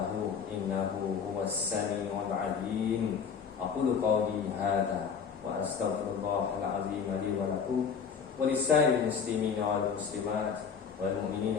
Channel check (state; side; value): quieter; right; 6.5 dB